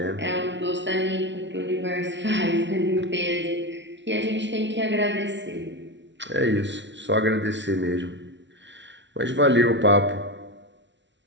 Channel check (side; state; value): left; late; 0.52 ms